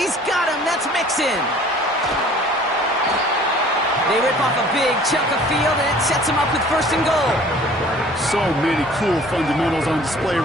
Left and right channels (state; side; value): normal; both; correlation 0.51